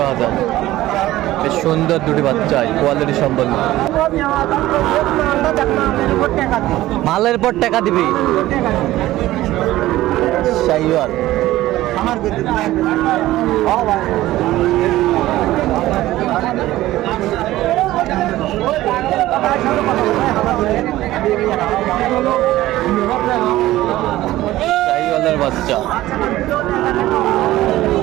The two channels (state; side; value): quieter; left; 15.9 dB